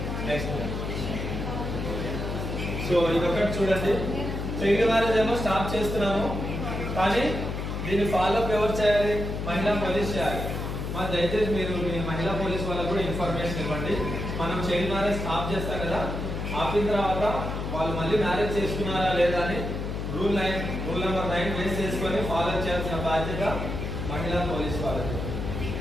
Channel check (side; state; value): left; noise; hum, 4 dB below the sound